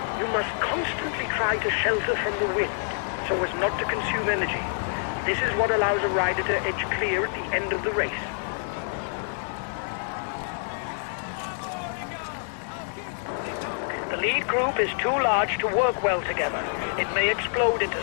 You must constantly try to shelter from the wind so as not to consume energy. This is what allows a rider to edge clear at the end of the race. The lead group is too large to work well together. It may explode into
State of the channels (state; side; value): silent; right; 60 dB below the other